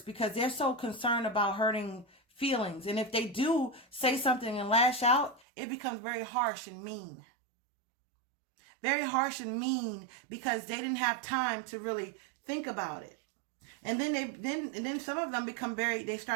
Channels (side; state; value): left; drops out; at 5.4 s